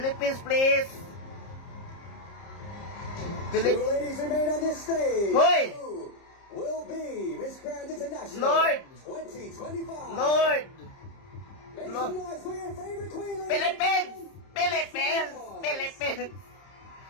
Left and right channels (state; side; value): late; right; 30 ms